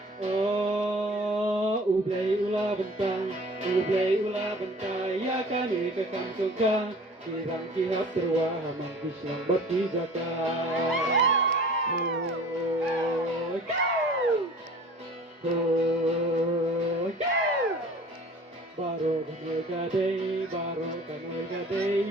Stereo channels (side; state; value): both; normal; correlation 0.45